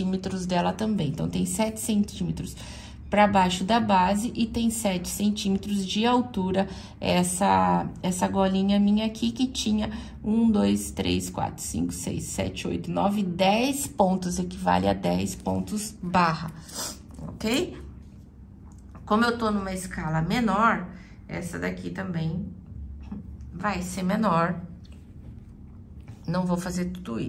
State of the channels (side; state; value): both; identical; correlation 1.00